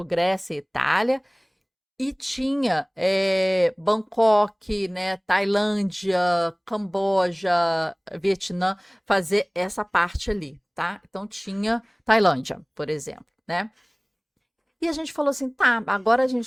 Grécia e Itália, e tinha Bangkok, né, Tailândia, Camboja, Vietnã, fazer essa parte ali, tá? Então tinha Tailândia, por exemplo, né? E a gente falou assim: tá, agora a gente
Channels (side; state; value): both; identical; correlation 1.00